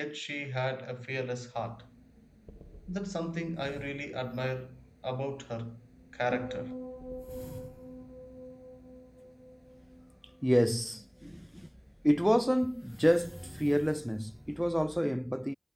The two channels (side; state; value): both; identical; correlation 1.00